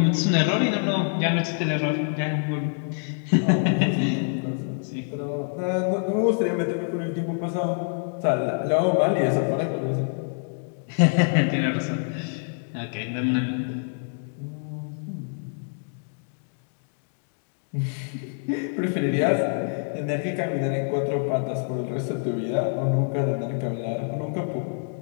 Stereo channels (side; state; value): right; silent; digital silence